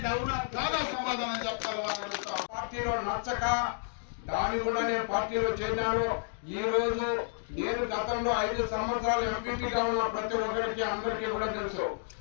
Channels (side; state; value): right; silent; digital silence